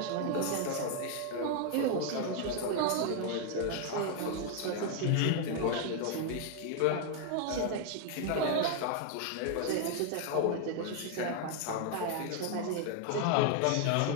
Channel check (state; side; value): different; both; correlation 0.00